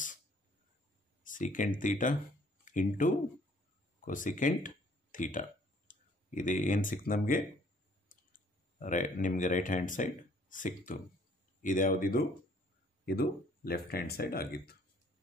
secant theta into cosecant theta. ಇದು ಏನು ಸಿಕ್ತು ನಮಗೆ ನಿಮಗೆ ರೈಟ್ ಹ್ಯಾಂಡ್ ಸೈಡ್ ಸಿಕ್ತು. ಇದ್ಯಾವುದಿದು ಇದು ಲೆಫ್ಟ್ ಹ್ಯಾಂಡ್ ಸೈಡ್ ಆಗಿತ್ತು.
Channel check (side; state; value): both; normal; correlation 0.60